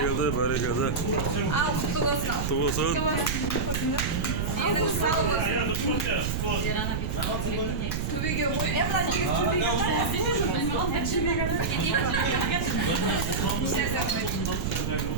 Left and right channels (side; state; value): right; noise; rumble, 1 dB below the sound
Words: bari geldi. Al kutu olsun. Kutu olsun. Yedim sağ olasın. Tübü gömü. Emrah gidip tübü